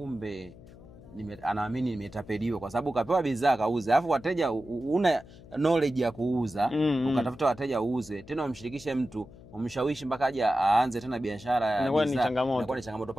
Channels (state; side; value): noise; left; hum, 20 dB below the sound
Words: anaamini nimetapeliwa kwa sababu ukapewa bidhaa kauze. Alafu wateja una knowledge ya kuuza, ukatafuta wateja uuze, tena umshirikishe mtu, umshawishi mpaka aje aanze tena biashara ya bidhaa. Inakuwa ni changamoto.